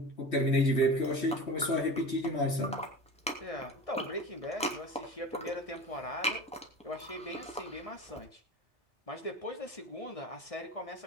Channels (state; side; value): normal; both; correlation 0.32